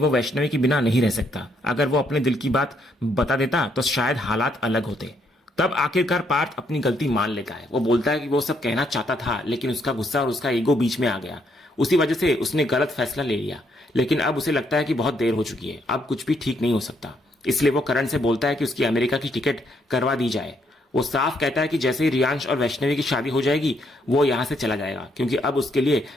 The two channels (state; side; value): normal; both; correlation 0.73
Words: वैष्णवी के बिना नहीं रह सकता। अगर वो अपने दिल की बात बता देता तो शायद हालात अलग होते। तब आखिरकार पार्थ अपनी गलती मान लेता है। वो बोलता है कि वो सब कहना चाहता था लेकिन उसका गुस्सा और उसका ईगो बीच में आ गया। उसी वजह से उसने गलत फैसला ले लिया। लेकिन अब उसे लगता है कि बहुत देर हो चुकी है, अब कुछ भी ठीक नहीं हो सकता। इसलिए वो करण से बोलता है कि उसकी अमेरिका की टिकट करवा दी जाए। वो साफ कहता है कि जैसे ही रियांश और वैष्णवी की शादी हो जाएगी वो यहां से चला जाएगा, क्योंकि अब उसके लिए